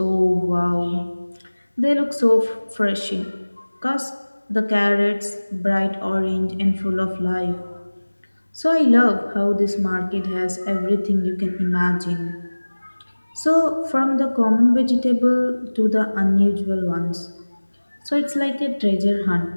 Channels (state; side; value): inverted; both; correlation -1.00